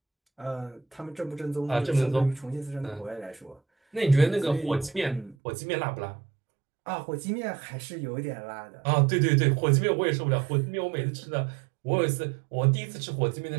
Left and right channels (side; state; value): left; drops out; at 5.4 s